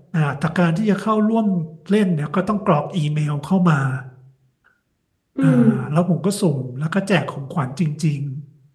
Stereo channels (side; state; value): both; identical; correlation 1.00